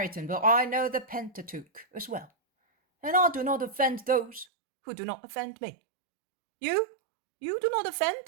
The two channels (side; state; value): left; drops out; at 4.5 s